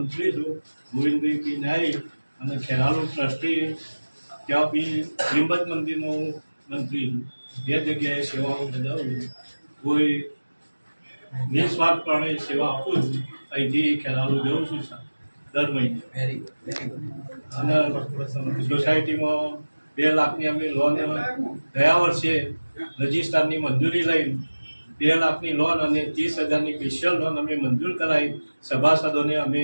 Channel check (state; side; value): inverted; both; correlation -1.00